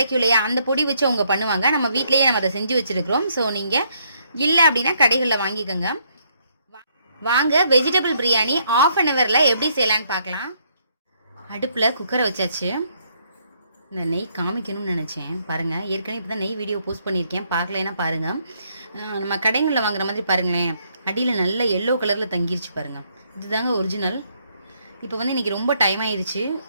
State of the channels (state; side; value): inverted; both; correlation -0.71